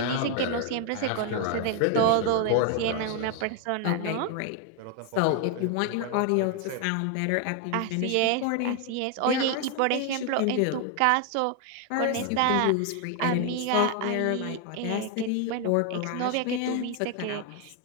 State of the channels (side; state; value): both; different; correlation 0.00